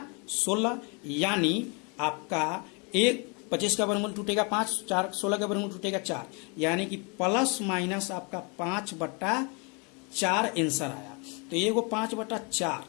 यानी आपका 25 का वर्गमूल टूटेगा 5, 4 16 का वर्गमूल टूटेगा 4, यानी कि प्लस माइनस आपका 5/4 आंसर आया। तो ये वो 5/4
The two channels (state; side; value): quieter; right; 32.9 dB